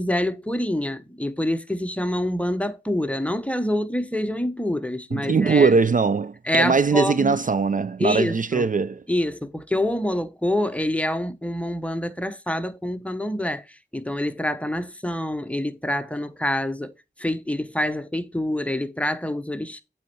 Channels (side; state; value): both; normal; correlation 0.70